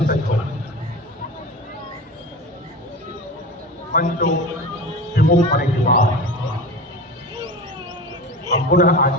सज्ज होगा। मंचो विमुख होने के बाद हम पुनः आज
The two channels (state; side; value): normal; both; correlation 0.30